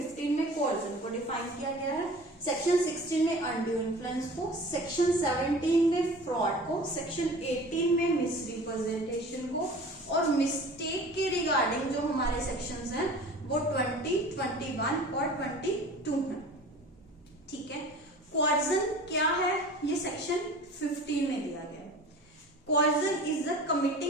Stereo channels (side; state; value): both; normal; correlation 0.41